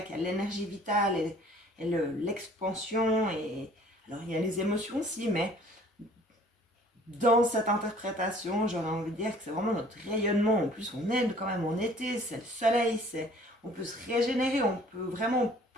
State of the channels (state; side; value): normal; both; correlation 0.53